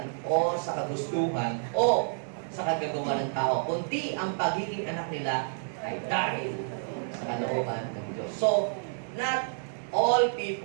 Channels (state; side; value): silent; left; digital silence